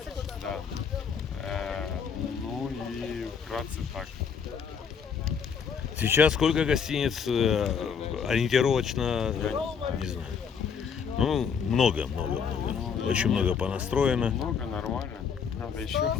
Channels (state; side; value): quieter; right; 6.6 dB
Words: Да. Ну и вкратце так. Сейчас сколько гостиниц ориентировочно, не знаю. Ну, много. Очень много понастроено. Много, нормально. Надо еще.